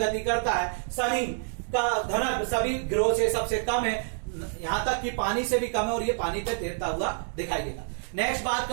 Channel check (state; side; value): silent; left; digital silence